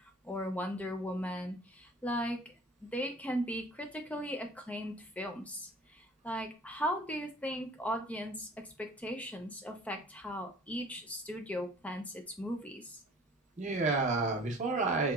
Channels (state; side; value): normal; both; correlation 0.48